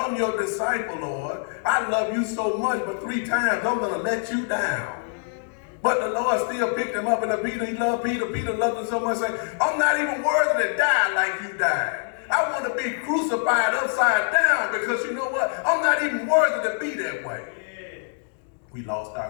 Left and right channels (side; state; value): right; silent; 62 dB below the other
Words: your disciple, Lord. I love you so much, but 3 times I'm going to let you down. But the Lord still picked him up, and he loved Peter. Peter loved him so much, saying, I'm not even worthy to die like you died. I want to be crucified upside down, because you know what? I'm not even worthy to be that way. We lost